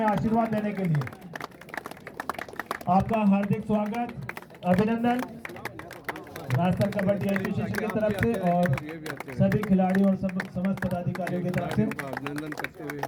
आशीर्वाद देने के लिए। आपका हार्दिक स्वागत, अभिनंदन राजस्थान कबड्डी एसोसिएशन की तरफ से और सभी खिलाड़ियों और समस्त पदाधिकारियों की तरफ से अभिनंदन करते हुए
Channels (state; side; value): identical; both; correlation 1.00